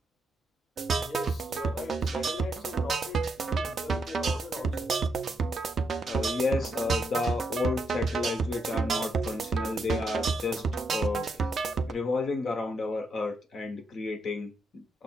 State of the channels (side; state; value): both; normal; correlation 0.79